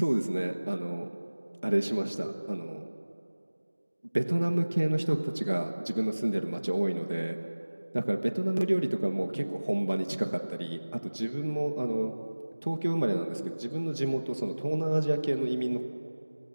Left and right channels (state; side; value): inverted; both; correlation -1.00